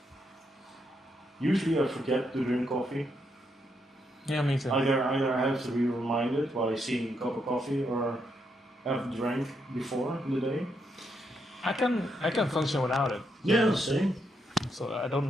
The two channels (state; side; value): normal; both; correlation 0.79